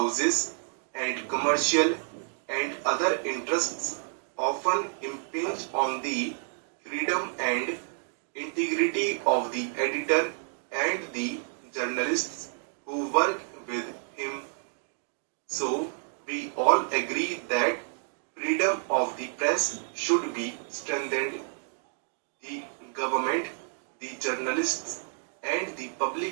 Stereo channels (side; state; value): left; silent; 58 dB below the other